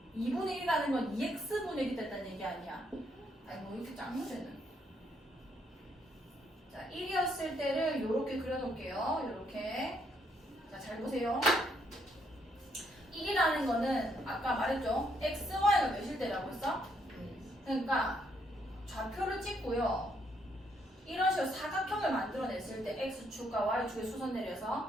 2분의 1이라는 건 2x분의 1이 됐다는 얘기 아니야. 아니, 뭐 이렇게 짱무새는. 자, 1이었을 때를 이렇게 그려놓을게요. 이렇게. 자, 잘 보세요. 1이라는 거는 아까 말했죠. x, y가 몇일 때라고 했어? 그러니까 좌표를 찍고요. 이런 식으로 사각형을 만들어냈을 때 x축과 y축에 수선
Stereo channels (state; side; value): normal; both; correlation 0.72